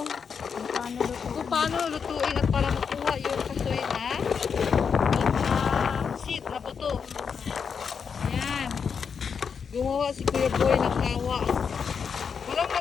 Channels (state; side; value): quieter; right; 6.4 dB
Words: lutuin at para makuha yung kasoy na seed na buto. Ayan. Gumawa si Kuya Boy ng kawa. Walang